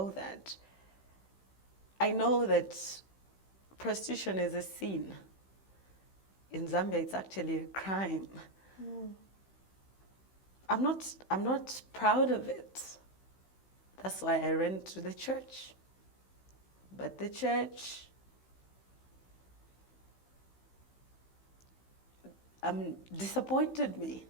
that. I know that prostitution is a sin. In Zambia, it's actually a crime. I'm not proud of it. That's why I ran to the church. But the church, disappointed me.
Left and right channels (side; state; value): right; late; 15 ms